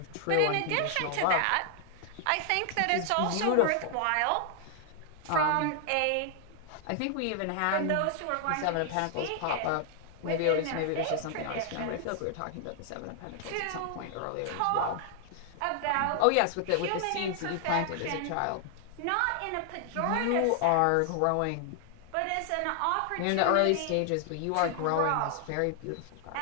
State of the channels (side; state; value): both; different; correlation 0.00